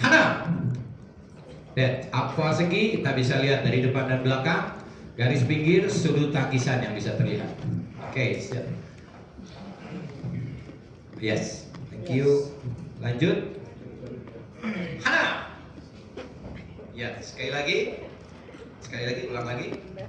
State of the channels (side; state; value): both; identical; correlation 1.00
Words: Dan apa segi kita bisa lihat dari depan dan belakang. Garis pinggir sudut tangkisan yang bisa terlihat. Oke, siap. Yes, thank you. Lanjut. Hana. Ya, sekali lagi, ulang lagi.